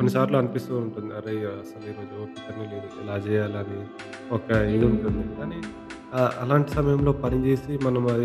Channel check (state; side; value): identical; both; correlation 1.00